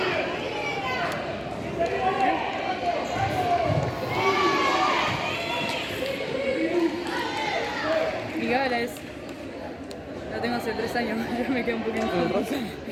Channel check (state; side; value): identical; both; correlation 1.00